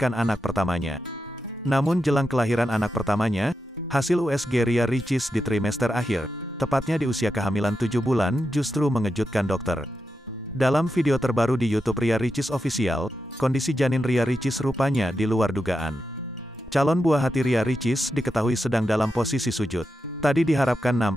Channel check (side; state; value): both; normal; correlation 0.88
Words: anak pertamanya. Namun jelang kelahiran anak pertamanya, hasil USG Ria Ricis di trimester akhir, tepatnya di usia kehamilan 7 bulan, justru mengejutkan dokter. Dalam video terbaru di YouTube Ria Ricis Official, kondisi janin Ria Ricis rupanya di luar dugaan. Calon buah hati Ria Ricis diketahui sedang dalam posisi sujud. Tadi diharapkan